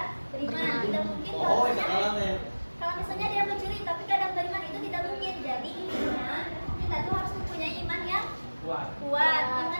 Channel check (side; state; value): both; inverted; correlation -1.00